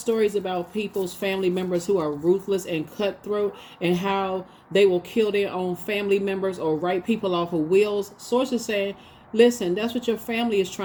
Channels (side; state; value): both; identical; correlation 1.00